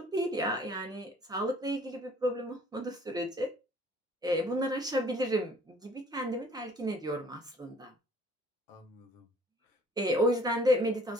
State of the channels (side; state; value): both; normal; correlation 0.56